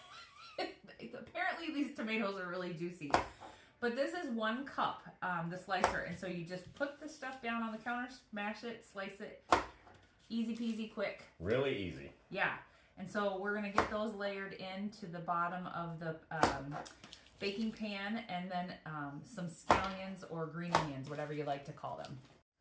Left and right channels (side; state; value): both; identical; correlation 1.00